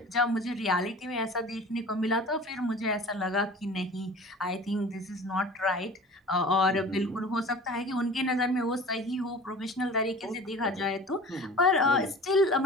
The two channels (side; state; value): both; normal; correlation 0.40